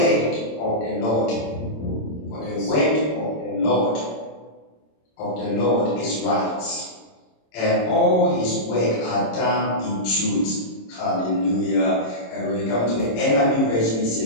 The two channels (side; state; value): right; late; 26 ms